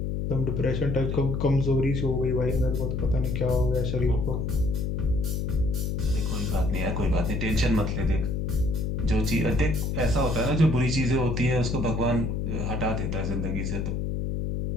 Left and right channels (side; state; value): left; noise; hum, 1 dB below the sound